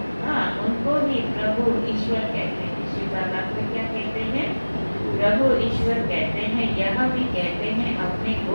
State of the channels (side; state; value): both; inverted; correlation -1.00